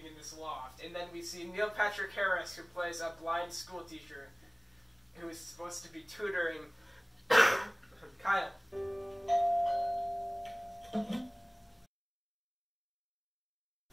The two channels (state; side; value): identical; both; correlation 1.00